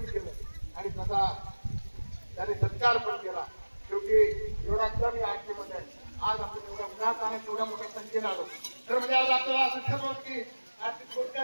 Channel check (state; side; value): inverted; both; correlation -1.00